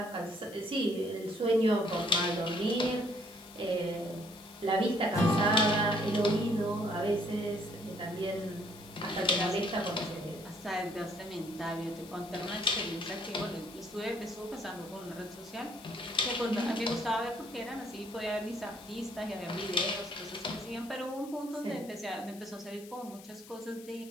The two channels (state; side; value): noise; left; hiss, 19 dB below the sound